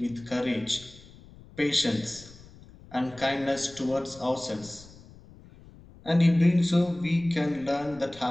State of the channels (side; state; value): left; noise; rumble, 22 dB below the sound